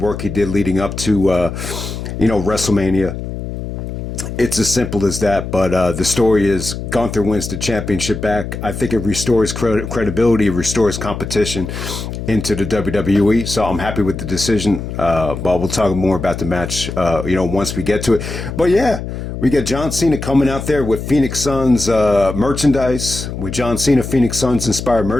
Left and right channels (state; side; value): noise; left; hum, 7 dB below the sound